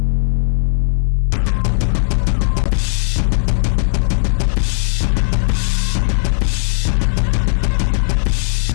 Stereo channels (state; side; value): silent; right; 66 dB below the other